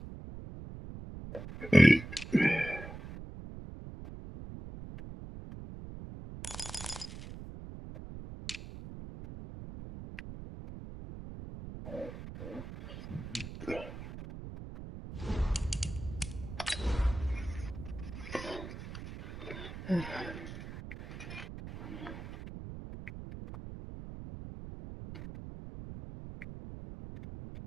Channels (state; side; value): noise; right; rumble, 11 dB below the sound